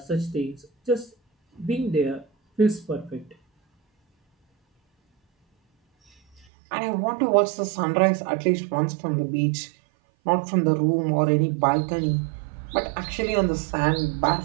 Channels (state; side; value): drops out; left; at 6.5 s